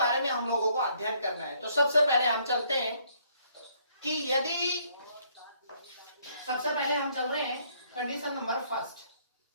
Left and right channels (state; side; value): inverted; both; correlation -0.66